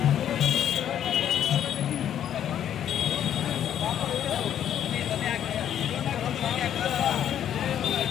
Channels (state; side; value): quieter; right; 10.1 dB